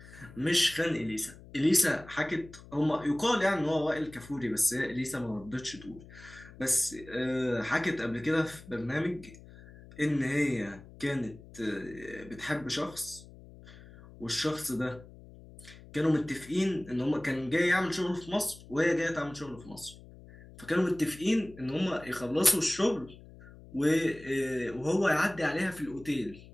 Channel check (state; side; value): noise; left; hum, 19 dB below the sound